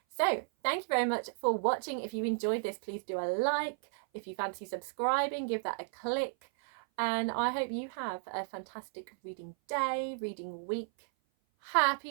So thank you very much for watching. If you enjoyed this, please do a like. If you fancy subscribing, give that a click. And I hope you have a fantastic reading day, reading week.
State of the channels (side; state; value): left; silent; 55 dB below the other